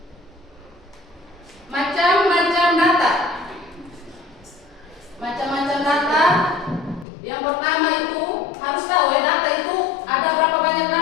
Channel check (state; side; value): drops out; right; at 7.1 s